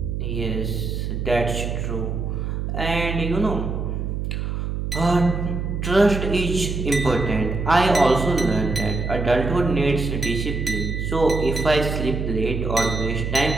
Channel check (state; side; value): noise; right; hum, 3 dB below the sound